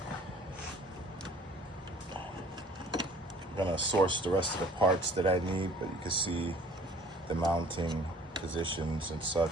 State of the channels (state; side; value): normal; both; correlation 0.52